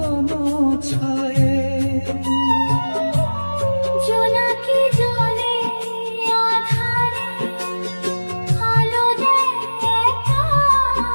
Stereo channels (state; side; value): inverted; both; correlation -1.00